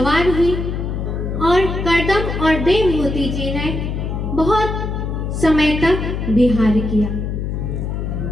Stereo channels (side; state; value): left; noise; hum, 3 dB below the sound